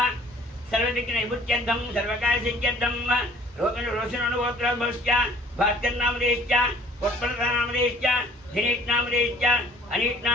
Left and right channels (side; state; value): both; normal; correlation 0.55